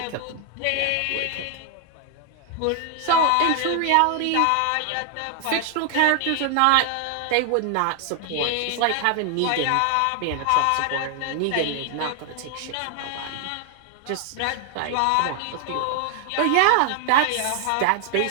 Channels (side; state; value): both; different; correlation 0.00